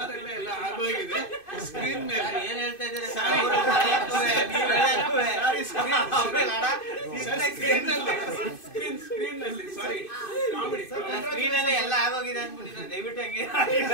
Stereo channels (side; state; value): right; late; 2.5 ms